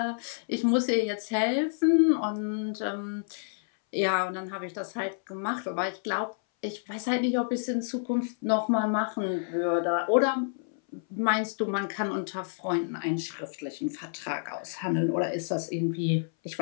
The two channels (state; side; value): silent; right; 59 dB below the other